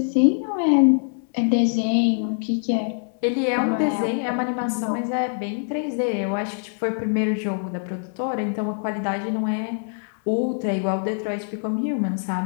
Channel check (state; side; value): silent; right; digital silence